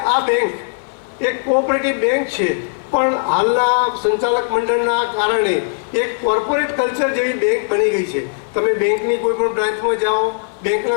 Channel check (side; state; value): right; silent; digital silence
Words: આ બેંક એક કોઓપરેટિવ બેંક છે, પણ હાલના સંચાલક મંડળના કારણે એક કોર્પોરેટ કલ્ચર જેવી બેંક બની ગઈ છે. તમે બેંકની કોઈ પણ બ્રાન્ચમાં જાઓ,